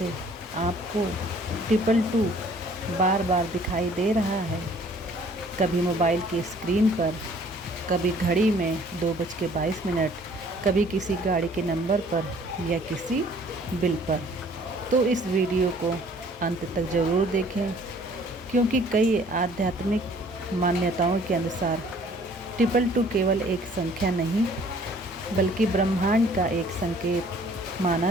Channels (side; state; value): both; normal; correlation 0.56